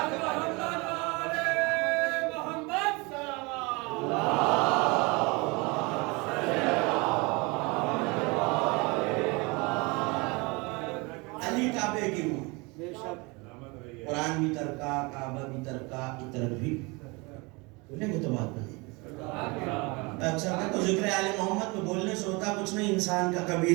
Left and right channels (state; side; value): quieter; left; 26.9 dB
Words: قرآن بھی ترکا، کعبہ بھی ترکا، عطرت بھی. بولیں گے تو بات بنے. اکثر کہ تو ذکر آل محمد میں بولنے سے ہوتا کچھ نہیں، انسان کا